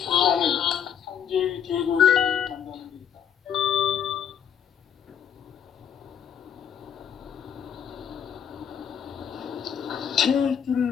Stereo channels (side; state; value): right; quieter; 8.6 dB